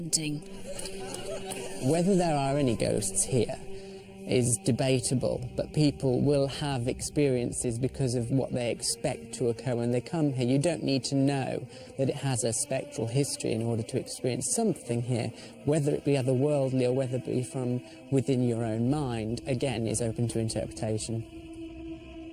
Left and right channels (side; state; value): both; identical; correlation 1.00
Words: Whether there are any ghosts here is debatable, but people will have experiences because of what they expect to occur when they come here. You don't need to know that it has a spectral history in order to experience something here, whether it be otherworldly or whether it be from within your own mind, again, is open to interpretation.